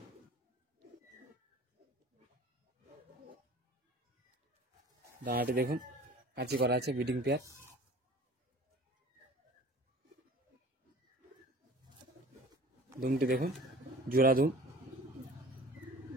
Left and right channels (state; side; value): normal; both; correlation 0.44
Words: ডানাটি দেখুন কাঁচি করা আছে, ব্রিডিং পেয়ার। দুমটি দেখুন, জোড়া দুম।